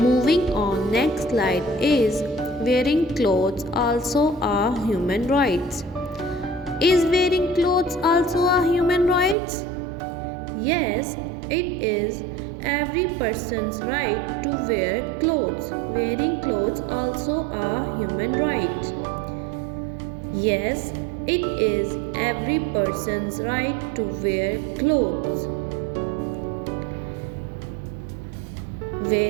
on, next slide is wearing clothes also a human rights. Is wearing clothes also a human rights? Yes, it is every person's right to wear clothes. Wearing clothes also a human right. Yes, it is every person's right to wear clothes.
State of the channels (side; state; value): left; drops out; at 9.3 s